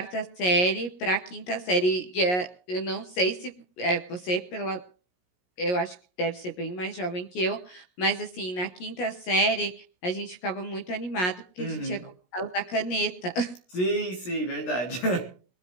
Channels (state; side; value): late; right; 17 ms